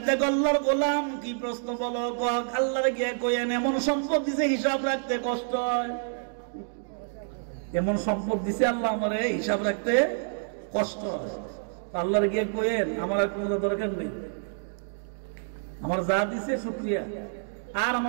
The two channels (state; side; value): silent; left; digital silence